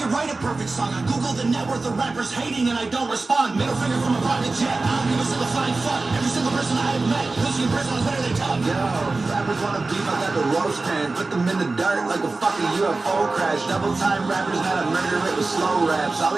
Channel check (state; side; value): quieter; left; 3.5 dB